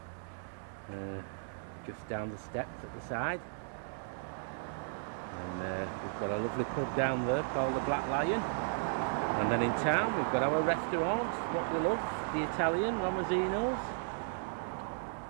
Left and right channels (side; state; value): left; silent; digital silence